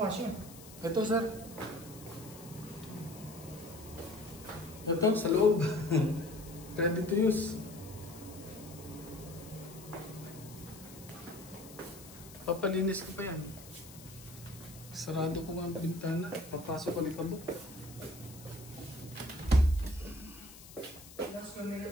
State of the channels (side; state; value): left; noise; hiss, 17 dB below the sound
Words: Ito, sir. Ito, sa loob. Ready to use. Papalinis ko pa yan. Sarado ko nga ang bintana. Papasok ko ni kabuk. Ilang square